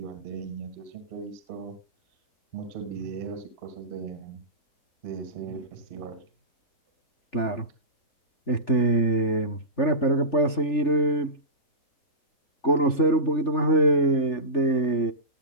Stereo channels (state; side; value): late; right; 3.4 ms